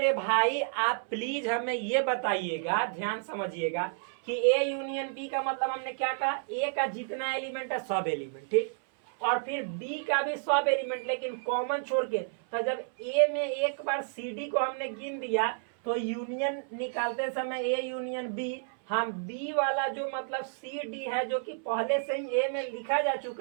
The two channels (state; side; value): silent; left; 57 dB below the other